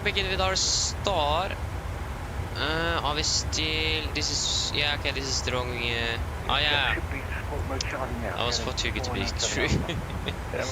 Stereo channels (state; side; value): identical; both; correlation 1.00